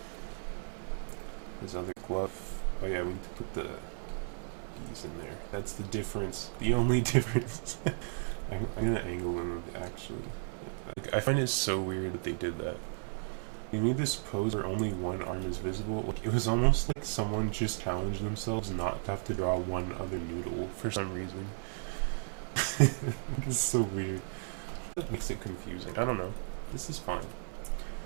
His other glove. Oh yeah, we need to put the bees in there. That's the difference. The only difference. I'm gonna angle them actually. Like, I find it so weird that they did that. They made this pose where only one arm is visible. Like, it was almost like someone just challenged themselves not to have to draw one other noodle for some reason. It's so weird. That makes it confusing. I don't know. This is fine.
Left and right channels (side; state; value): left; silent; digital silence